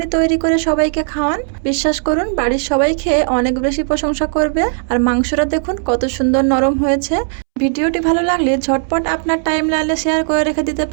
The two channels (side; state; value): left; silent; 69 dB below the other